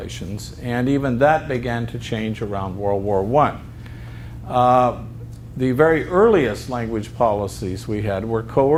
and even that began to change around World War I. The very earliest language policies we had were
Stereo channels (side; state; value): both; identical; correlation 1.00